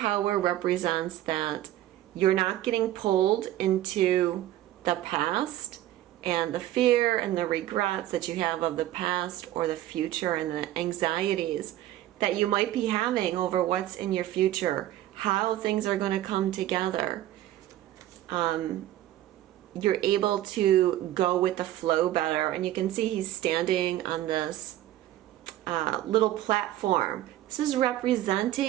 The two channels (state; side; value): quieter; left; 13.7 dB